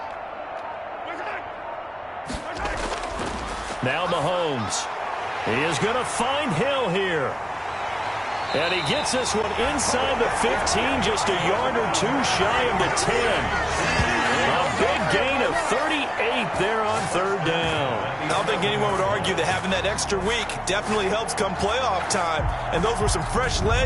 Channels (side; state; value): both; identical; correlation 1.00